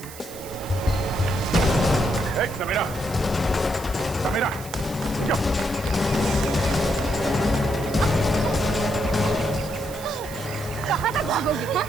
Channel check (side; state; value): right; noise; hiss, 16 dB below the sound